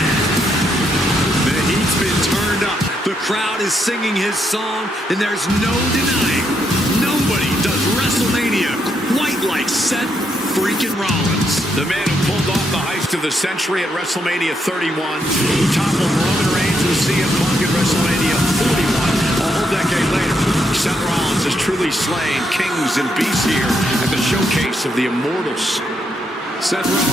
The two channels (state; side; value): normal; both; correlation 0.78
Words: The heat's been turned up. The crowd is singing his song, and there's no denying nobody does WrestleMania quite like Seth freaking Rollins. The man who pulled off the heist of the century at WrestleMania 31, who toppled Roman Reigns and CM Punk at WrestleMania 41. A whole decade later, Seth Rollins has truly slain kings and beasts here at the showcase of the Immortals. Seth